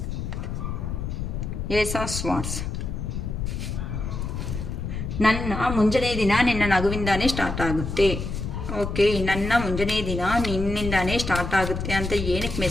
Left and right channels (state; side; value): noise; left; rumble, 4 dB below the sound